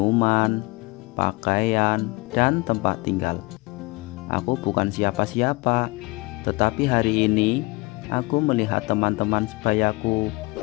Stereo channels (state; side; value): quieter; right; 24.4 dB